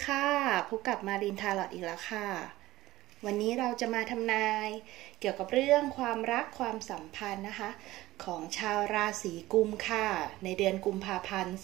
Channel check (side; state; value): left; quieter; 17.0 dB